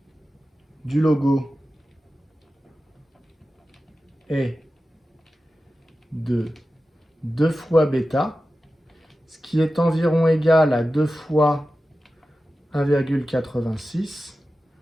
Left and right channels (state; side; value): normal; both; correlation 0.93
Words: du logo est de 2 fois bêta, ce qui est environ égal à 2 fois 1,86,